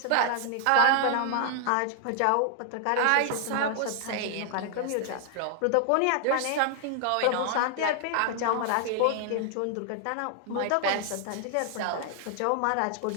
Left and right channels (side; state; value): both; different; correlation 0.00